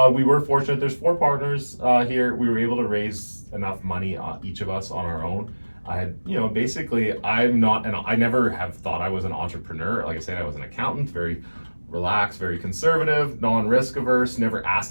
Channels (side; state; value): both; inverted; correlation -1.00